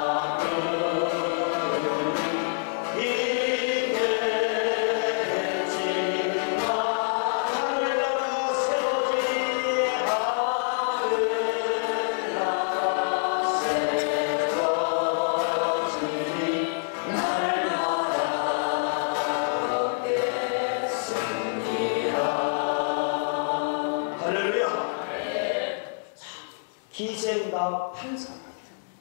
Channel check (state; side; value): silent; right; 61 dB below the other